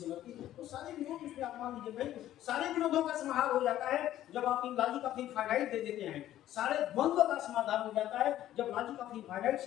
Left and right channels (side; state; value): right; quieter; 12.9 dB